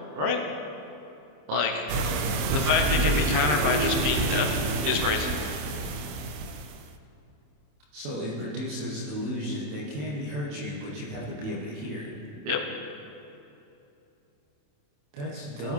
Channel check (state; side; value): late; left; 28 ms